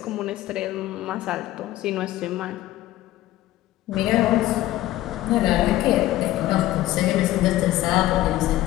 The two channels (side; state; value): right; quieter; 15.2 dB